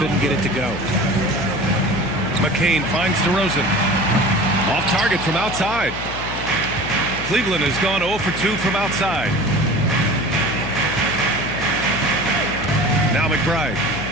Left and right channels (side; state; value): left; noise; hum, 10 dB below the sound